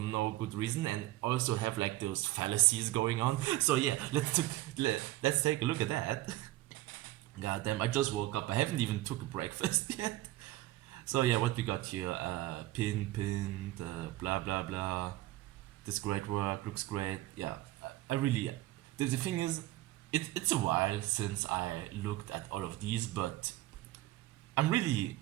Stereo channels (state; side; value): quieter; left; 16.9 dB